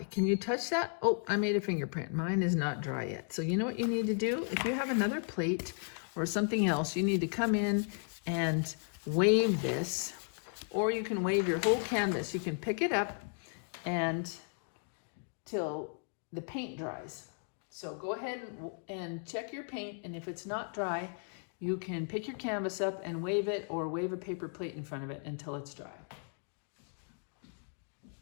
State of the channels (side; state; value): right; silent; 54 dB below the other